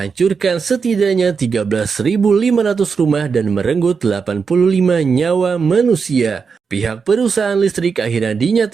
setidaknya 13.500 rumah dan merenggut 85 nyawa manusia. Pihak perusahaan listrik akhirnya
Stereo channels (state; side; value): quieter; left; 5.6 dB